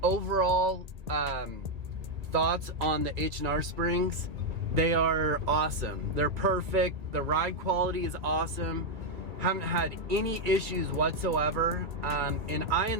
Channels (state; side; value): late; left; 1.9 ms